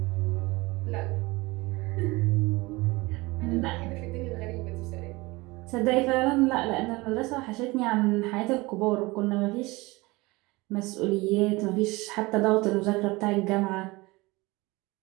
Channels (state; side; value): quieter; left; 22.7 dB